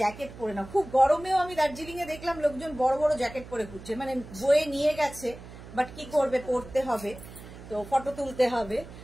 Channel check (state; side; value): noise; right; hum, 16 dB below the sound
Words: জ্যাকেট পরে নাও, খুব গরমেও আমি দার্জিলিং এ দেখলাম লোকজন বড় বড় জ্যাকেট পরে ঘুরছে, মানে বয়ে নিয়ে গেছে, বাট কি করবে, পরতে হবে তো, ফটো তুলতে হবে,